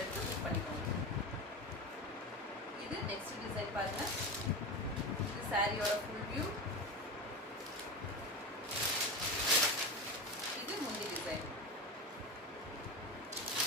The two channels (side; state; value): both; normal; correlation 0.22